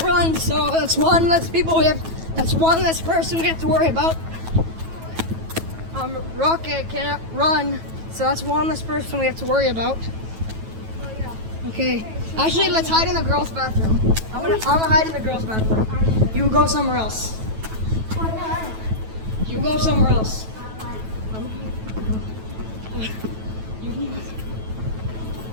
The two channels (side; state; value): left; late; 9.2 ms